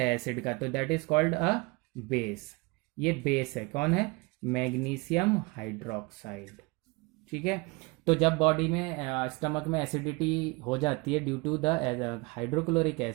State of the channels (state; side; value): quieter; left; 26.6 dB